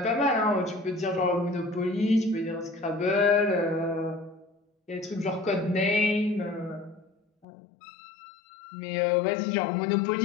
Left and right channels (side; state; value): right; drops out; at 7.5 s